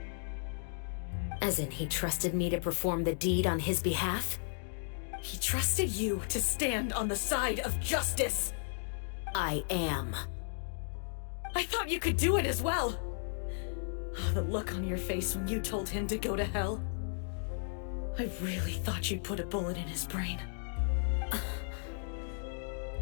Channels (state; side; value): silent; right; digital silence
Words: As in, he trusted me to perform the deed on his behalf? He trusted you to stand on the side of justice. I am. I thought you could do it as well. Oh, the look on your face when you told him to go to hell. I really thought you'd put a bullet in his brain.